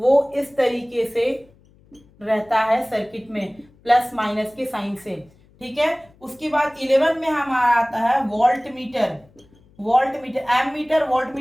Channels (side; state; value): left; noise; hum, 30 dB below the sound